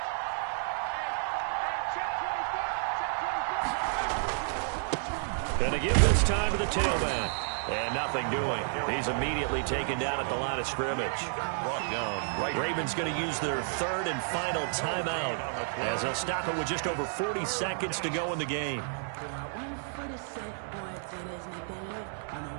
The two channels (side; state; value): left; silent; 57 dB below the other